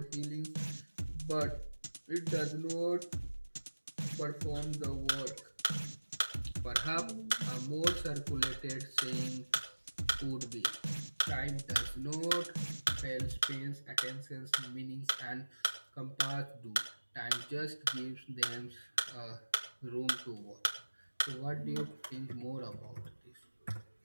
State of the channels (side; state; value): both; inverted; correlation -1.00